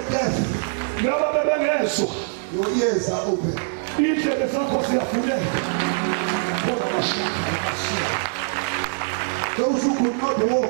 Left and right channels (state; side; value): silent; left; 63 dB below the other